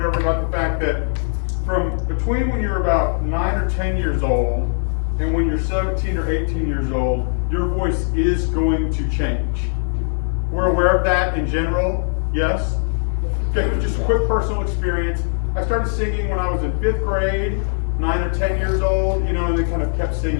about the fact that from between when you're about 9 or 10 years old and when you're 17 or 18 years old, your voice is going to change? We're aware of that in general, yes? Okay, just a quick personal experience. I started singing when I was in 5th grade, 9 or 10 years old, and then kind of kept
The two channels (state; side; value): silent; right; digital silence